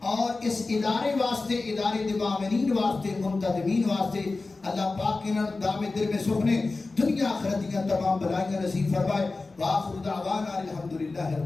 اور اس ادارے واسطے، ادارے دے معاونین واسطے، منتظمین واسطے اللہ پاک انہاں دام دل میں سکھنے دنیا آخرت دیاں تمام بلائیاں نصیب فرمائے۔ وآخر دعوانا الحمدللہ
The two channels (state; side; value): quieter; right; 3.6 dB